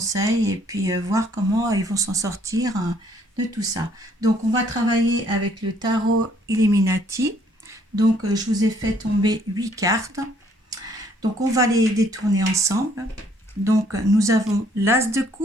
et puis voir comment ils vont s'en sortir de tout ça. Donc, on va travailler avec le tarot Illuminati. Donc, je vous ai fait tomber 8 cartes. Donc, on va les détourner ensemble. Donc, nous avons l'As de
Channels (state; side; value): normal; both; correlation 0.64